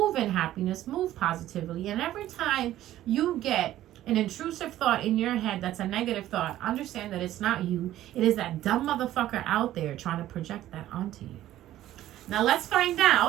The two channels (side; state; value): left; quieter; 13.6 dB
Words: in happiness. Move positively. And every time you get an intrusive thought in your head that's a negative thought, understand that it's not you. It is that dumb motherfucker out there trying to project that onto you. Now let's find